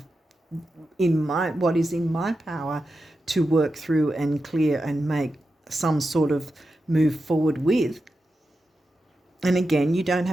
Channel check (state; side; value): normal; both; correlation 0.90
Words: what is in my power to work through and clear and make some sort of move forward with. And again, you don't